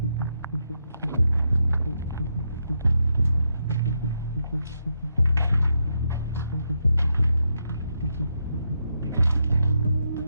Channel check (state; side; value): inverted; both; correlation -0.82